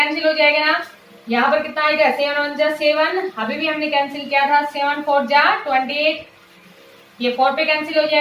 हो जाएगा ना, यहाँ पर कितना आएगा 7 1 जा 7, अभी भी हमने कैंसिल किया था, 7 4 जा 28, ये 4 पे कैंसिल हो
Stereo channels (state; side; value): identical; both; correlation 1.00